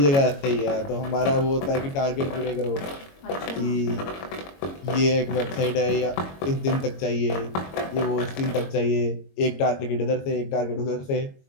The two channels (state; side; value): late; right; 22 ms